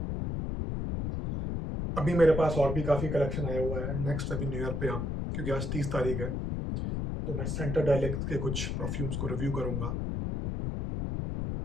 अभी मेरे पास और भी काफ़ी कलेक्शन आया हुआ है। नेक्स्ट अभी न्यू ईयर पे हम, क्योंकि आज 30 तारीख है, तो मैं सेंटर डायलेक्ट के कुछ परफ्यूम्स को रिव्यू करूँगा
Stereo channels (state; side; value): noise; left; rumble, 2 dB below the sound